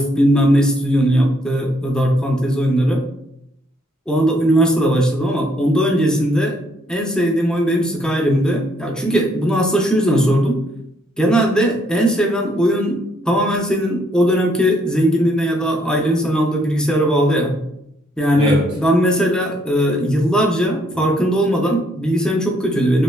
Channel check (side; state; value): both; normal; correlation 0.70